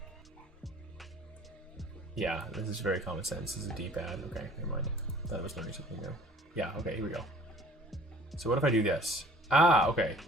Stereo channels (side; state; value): both; normal; correlation 0.51